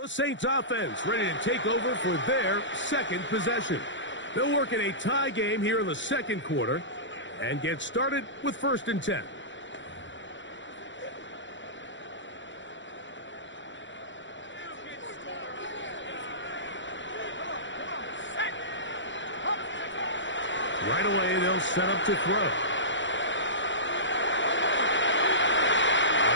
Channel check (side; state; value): right; late; 0.54 ms